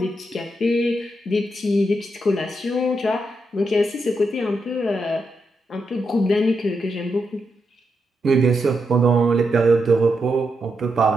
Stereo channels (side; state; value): both; normal; correlation 0.83